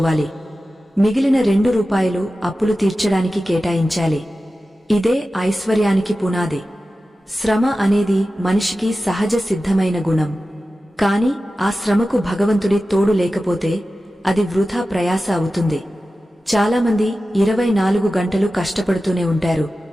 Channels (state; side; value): normal; both; correlation 0.94